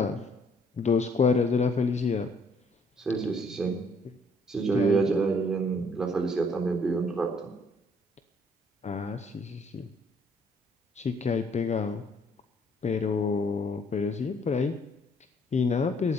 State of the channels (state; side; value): normal; both; correlation 0.64